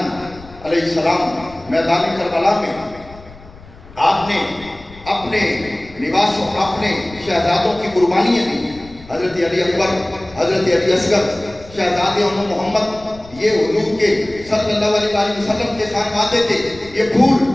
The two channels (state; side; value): noise; left; rumble, 21 dB below the sound